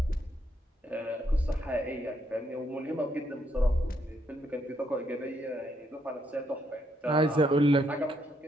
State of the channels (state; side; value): normal; both; correlation 0.75